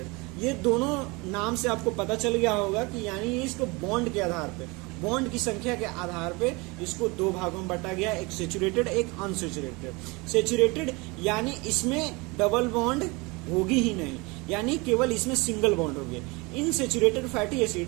ये दोनों नाम से आपको पता चल गया होगा कि यानी इसको बॉन्ड के आधार पे, बॉन्ड की संख्या के आधार पे इसको 2 भागों में बांटा गया, एक सेचुरेटेड एक अनसेचुरेटेड। सेचुरेटेड यानी इसमें डबल बॉन्ड होगी ही नहीं, यानी केवल इसमें सिंगल बॉन्ड होगी। In saturated fatty acid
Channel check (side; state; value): left; quieter; 26.2 dB